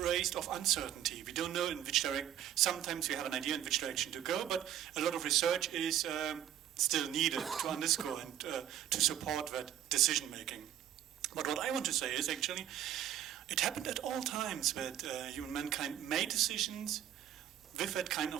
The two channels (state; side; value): quieter; left; 11.1 dB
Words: of uncertainty. We don't know in which direction. Sometimes we have an idea in which direction to go, but a lot of research is still needed to underscore and to support that decision making. But what I want to say is actually, it happened at all times that humankind made decisions with that kind